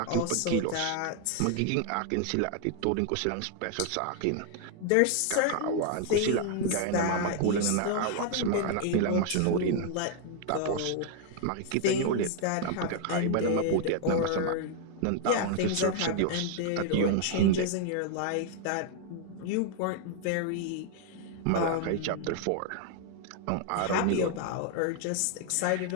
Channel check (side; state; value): both; different; correlation 0.00